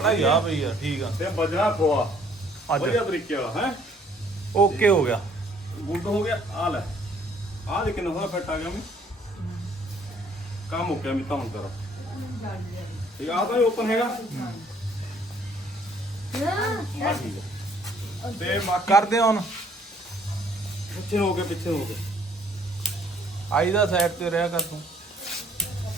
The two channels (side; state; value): both; normal; correlation 0.61